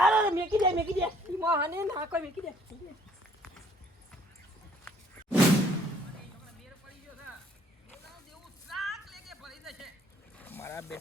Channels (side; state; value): both; normal; correlation 0.61